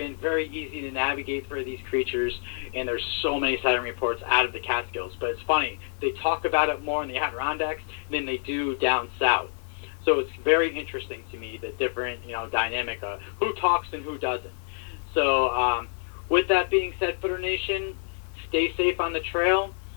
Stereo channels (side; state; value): right; silent; digital silence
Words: very easy to navigate for these creatures, and there's so many sighting reports out of the Catskills. But it's funny, they talk about it more in the Adirondacks than they do down south. So it's very interesting to me, the different, dynamic of who talks and who doesn't. So with that being said, Footer Nation, stay safe on the trail.